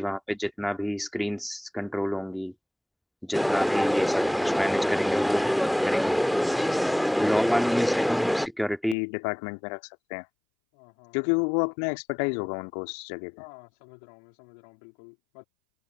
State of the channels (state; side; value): drops out; right; at 9.0 s